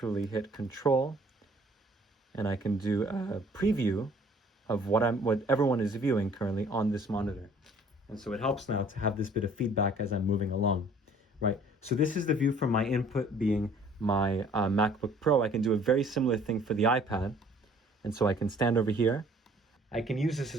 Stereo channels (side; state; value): both; normal; correlation 0.55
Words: hit Control, and I can do a preview of what everyone is viewing currently on this monitor. And so it helps now to have this bit of feedback as I'm moving along, right? So this is the view from my input being my MacBook Pro. I can do a very similar thing for the iPad. And so I can stand over here. I can use this